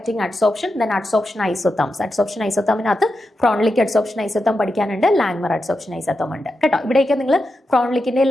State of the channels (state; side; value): normal; both; correlation 0.88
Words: adsorption, then adsorption isotherms. Adsorption ഐസോതേമിനകത്ത് ഫ്രോൺലിക് അഡ്സോപ്ഷൻ ഐസോതേം പഠിക്കാനുണ്ട്, ലാങ്മർ അഡ്സോപ്ഷൻ ഐസോതേം ഉണ്ട് കേട്ടോ. ഇവിടെയൊക്കെ നിങ്ങൾ ഫ്രോൺലിക്കിന്റെ